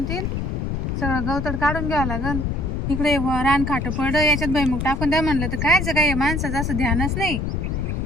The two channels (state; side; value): noise; left; rumble, 2 dB below the sound